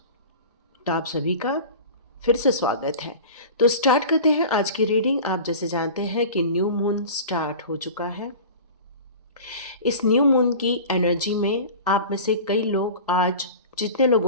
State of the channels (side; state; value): both; inverted; correlation -0.35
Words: तो आप सभी का फिर से स्वागत है। तो स्टार्ट करते हैं आज की रीडिंग। आप जैसे जानते हैं कि न्यू मून स्टार्ट हो चुका है। इस न्यू मून की एनर्जी में आप में से कई लोग, आज जितने